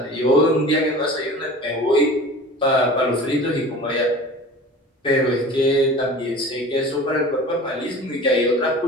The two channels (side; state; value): both; normal; correlation 0.39